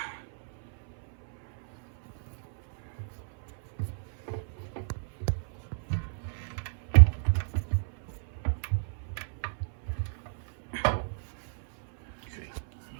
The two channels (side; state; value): left; silent; 57 dB below the other